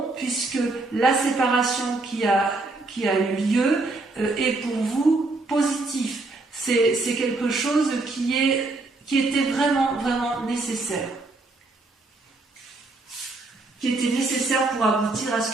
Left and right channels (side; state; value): left; quieter; 3.2 dB